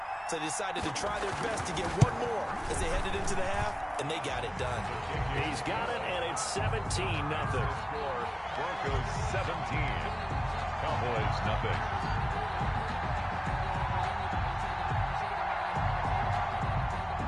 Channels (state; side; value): identical; both; correlation 1.00